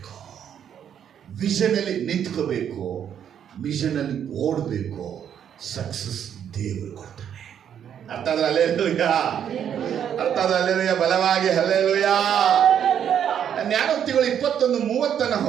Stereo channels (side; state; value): left; quieter; 9.0 dB